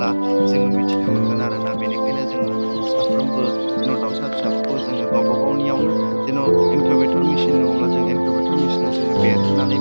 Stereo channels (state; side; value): inverted; both; correlation -1.00